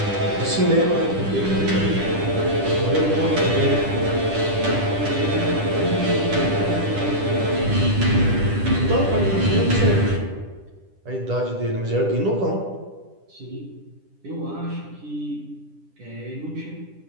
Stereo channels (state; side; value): late; left; 10 ms